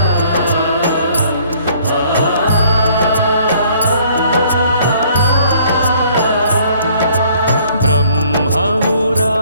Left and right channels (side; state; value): both; inverted; correlation -0.60